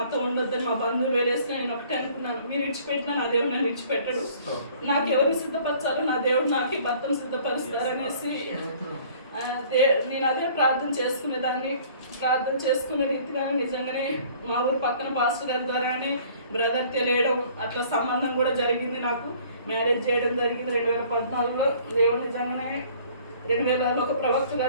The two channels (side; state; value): both; inverted; correlation -0.54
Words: ఉండొద్దు అని మా బంధువులు వేలేసిన నేను ఒకటే అనుకున్నాను. మీరు విడిచిపెట్టినా నా దేవుడు నన్ను విడిచిపెట్టడు, నాకు ఎవరిని సిద్ధపరచాలో నా దేవుడు నాకు ఈ భర్తను సిద్ధపరుస్తారనేసి నేను అదే ప్రార్థన చేసుకునే రీతిగా నిజంగానే మా ఊరు పక్కన పాస్టర్ గారి ద్వారానే బ్రదర్ తెలియడం, అట్లా సంబంధం కూడా జరిగింది. నాకు మ్యారేజ్ చేయడం జరిగింది 2014లో. దేవుడు నిజంగానే 2000లో ఒక ప్రవక్త